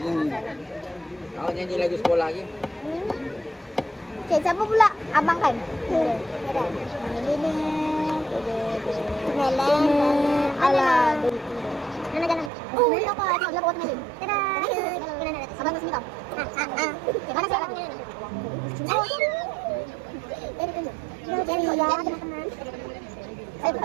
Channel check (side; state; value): left; drops out; at 12.5 s